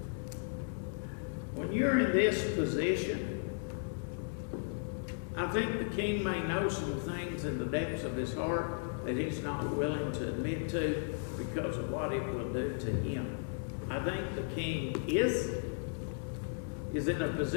when you're in this position, I think the king may know some things in the depths of his heart that he's not willing to admit to because of what it will do to him. I think the king is in a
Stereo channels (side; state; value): right; silent; digital silence